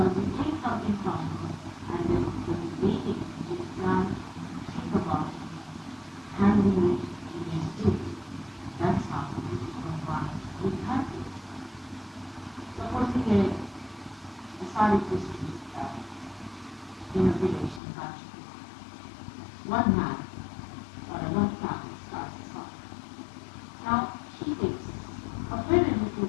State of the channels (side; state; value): right; drops out; at 17.8 s